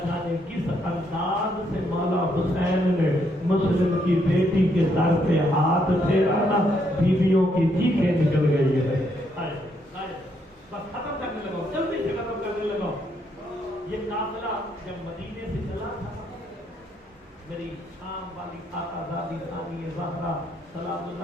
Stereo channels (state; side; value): normal; both; correlation 0.74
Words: جانے کس انداز سے مولا حسین نے مسلم کی بیٹی کے سر پہ ہاتھ پھیرا نا، بیویوں کی چیخیں نکل گئی ہے۔ بس ختم کرنے لگا، جلدی سے ختم کرنے لگا۔ یہ قافلہ جب مدینے سے چلا تھا، میری شام والی آقا زادی ثانی زہرا سلام